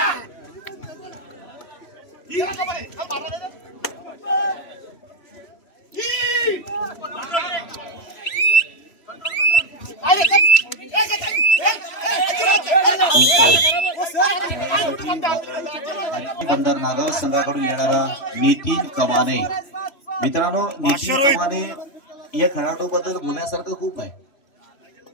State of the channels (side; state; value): right; late; 3.0 ms